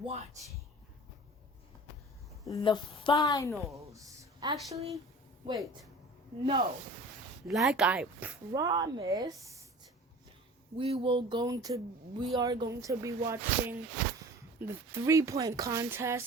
the finals. Actually, wait, no. Like I promised, we are going to be watching the 3-point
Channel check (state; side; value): normal; both; correlation 0.42